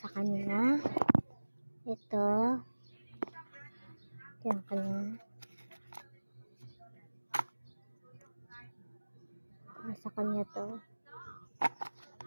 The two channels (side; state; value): both; inverted; correlation -1.00